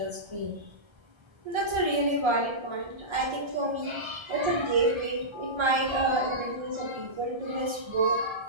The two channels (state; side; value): late; left; 1.3 ms